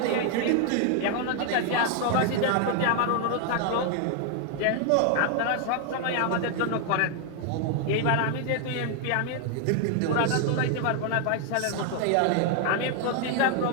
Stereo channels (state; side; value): different; both; correlation 0.00